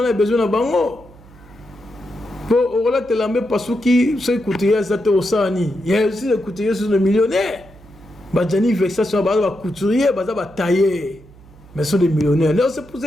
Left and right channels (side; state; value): right; noise; hum, 23 dB below the sound